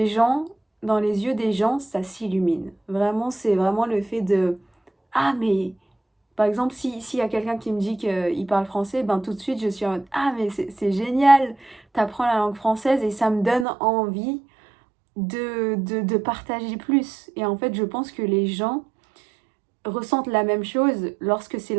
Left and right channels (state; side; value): drops out; left; at 13.7 s